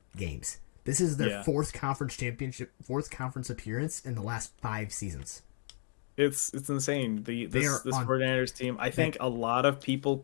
games. This is their fourth conference appearance in the last 5 seasons. It's insane. This 49ers team, I think a lot of people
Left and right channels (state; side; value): silent; right; 55 dB below the other